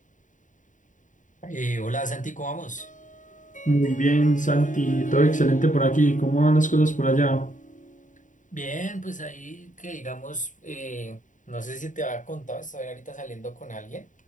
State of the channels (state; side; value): late; right; 0.37 ms